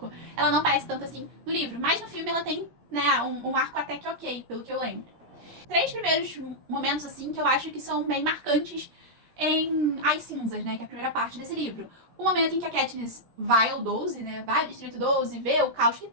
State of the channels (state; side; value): late; left; 17 ms